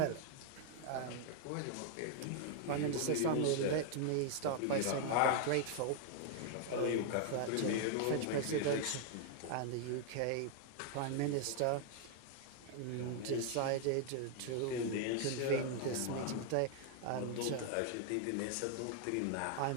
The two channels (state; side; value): different; both; correlation 0.00